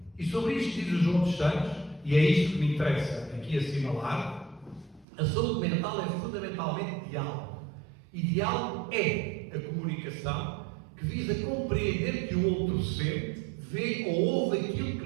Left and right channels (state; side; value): drops out; left; at 5.1 s